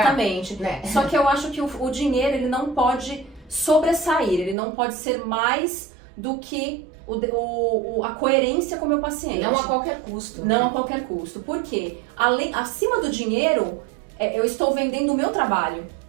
pagar, né? Só que eu acho que o dinheiro, ele não pode sobressair, ele não pode ser mais do que a coerência com o meu paciente. Não a qualquer custo. Não a qualquer custo. Por quê? Acima do dinheiro, eu estou vendendo o meu trabalho.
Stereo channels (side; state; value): left; drops out; at 4.5 s